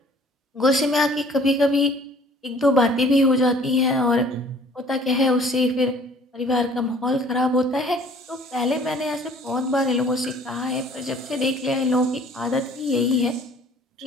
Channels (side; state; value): both; normal; correlation 0.53